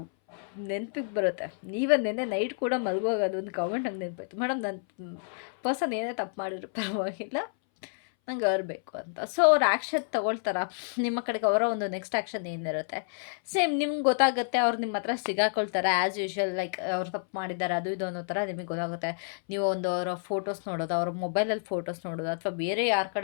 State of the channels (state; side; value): silent; right; 58 dB below the other